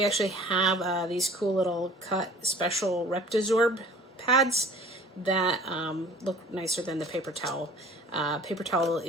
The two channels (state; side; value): normal; both; correlation 0.48